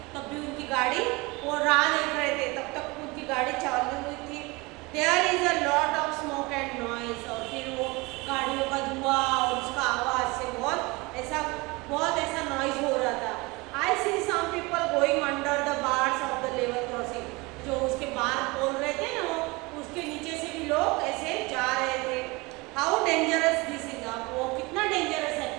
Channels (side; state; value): left; quieter; 24.7 dB